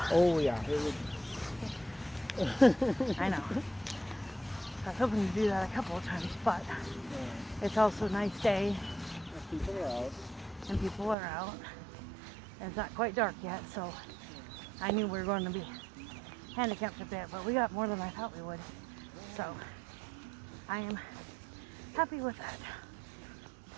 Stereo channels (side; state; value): left; drops out; at 11.2 s